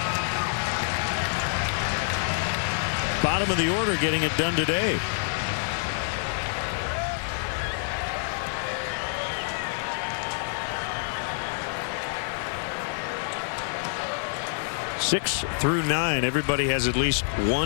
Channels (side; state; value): right; silent; 60 dB below the other